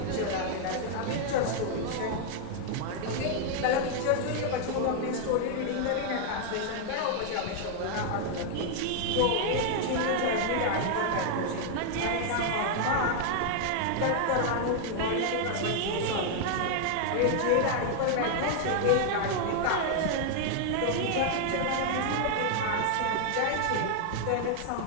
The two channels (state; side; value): different; both; correlation 0.00